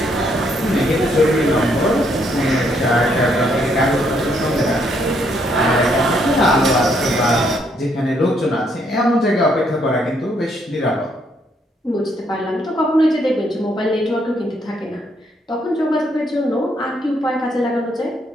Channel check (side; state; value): both; normal; correlation 0.72